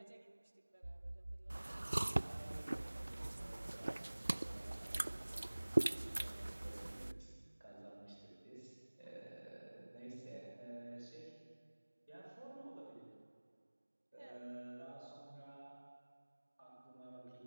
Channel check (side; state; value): both; inverted; correlation -1.00